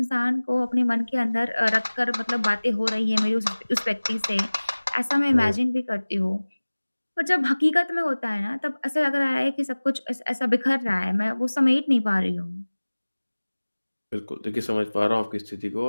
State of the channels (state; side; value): inverted; both; correlation -1.00